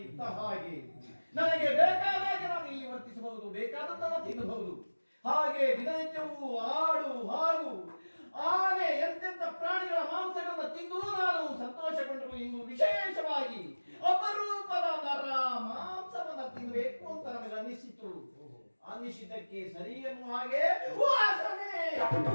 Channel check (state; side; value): inverted; both; correlation -1.00